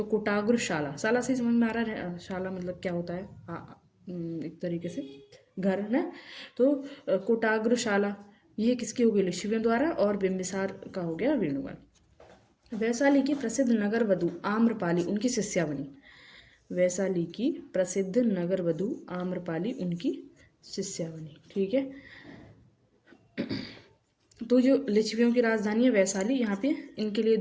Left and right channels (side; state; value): both; identical; correlation 1.00